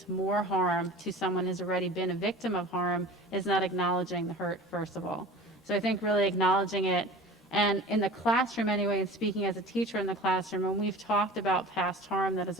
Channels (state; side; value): normal; both; correlation 0.39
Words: more harm to someone who's already been a victim of harm is not acknowledging the hurt, first of all. So I think really acknowledging it. And in the classroom anyway, and speaking as a teacher in the classroom, when we've talked about past harm that has